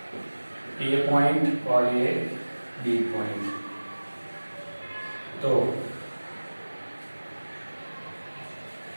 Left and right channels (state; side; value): inverted; both; correlation -1.00